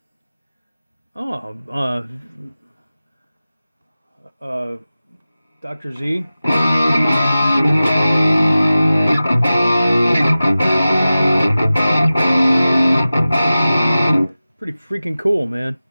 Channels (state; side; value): inverted; both; correlation -0.96